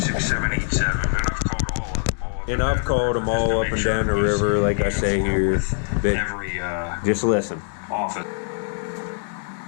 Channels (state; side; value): silent; right; digital silence